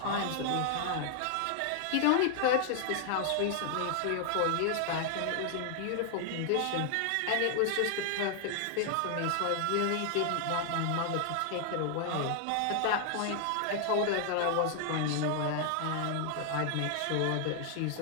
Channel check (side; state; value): both; different; correlation 0.00